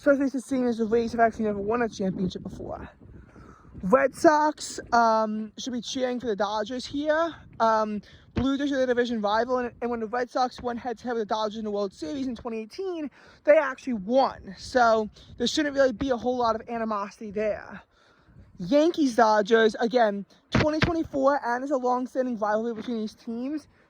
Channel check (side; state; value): both; identical; correlation 1.00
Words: since seeing as the Rays have actually never won a championship before. Red Sox should be cheering for the Dodgers here. Blue Jays are the division rival, and when the Red Sox went head-to-head with the Dodgers in the World Series in 2018, they actually won. So there shouldn't really be a whole lot of animosity there. Yankees-Dodgers, again, 2024, and there's a long-standing rivalry between these teams,